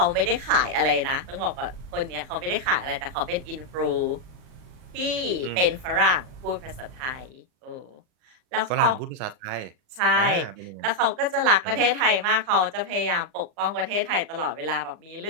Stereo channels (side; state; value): left; late; 38 ms